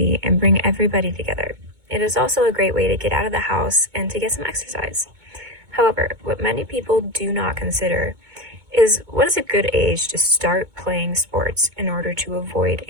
and bring everybody together. It is also a great way to get out of the house and to get some exercise. However, what many people do not consider is what is a good age to start playing sports in order to avoid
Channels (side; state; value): left; late; 2.2 ms